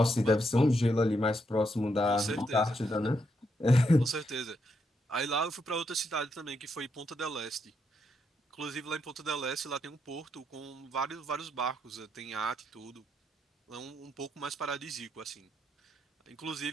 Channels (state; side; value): normal; both; correlation 0.79